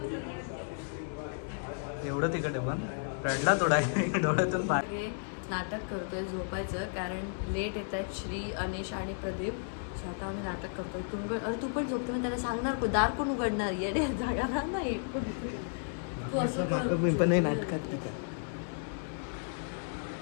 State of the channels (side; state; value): right; silent; digital silence